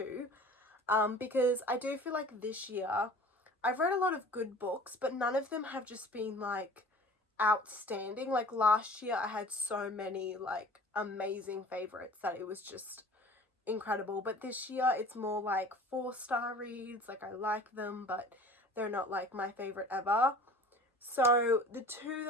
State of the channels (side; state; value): both; normal; correlation 0.44